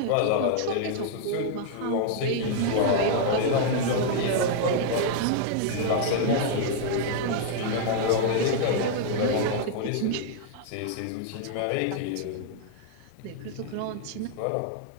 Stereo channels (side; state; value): both; different; correlation -0.01